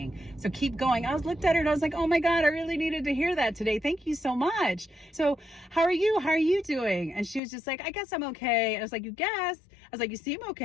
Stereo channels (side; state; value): right; drops out; at 7.4 s